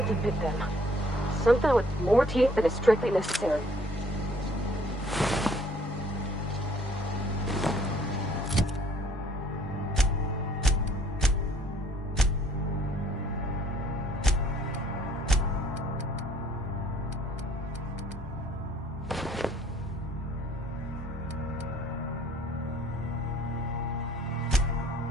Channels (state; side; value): normal; both; correlation 0.60